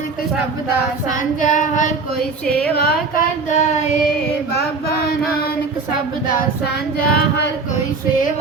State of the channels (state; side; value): quieter; left; 4.2 dB